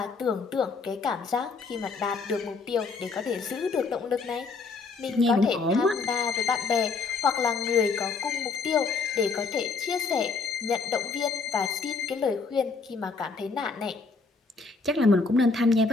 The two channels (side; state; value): right; quieter; 4.5 dB